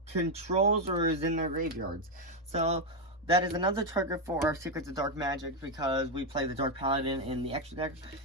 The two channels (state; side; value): normal; both; correlation 0.04